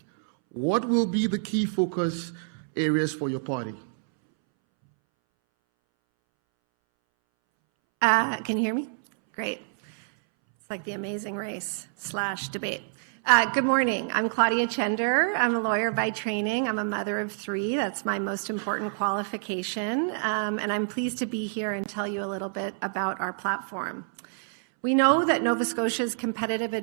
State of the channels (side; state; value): left; silent; 60 dB below the other